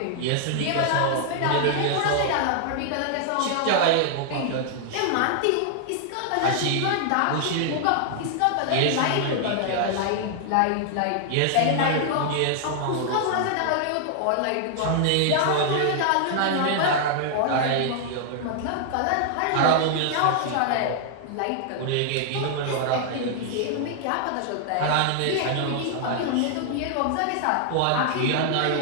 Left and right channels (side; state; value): both; different; correlation 0.00